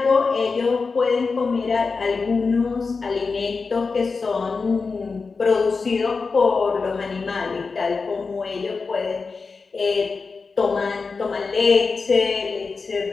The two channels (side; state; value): right; quieter; 4.6 dB